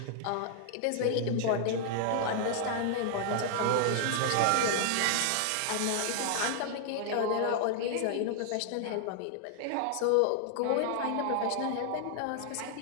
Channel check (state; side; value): different; both; correlation -0.01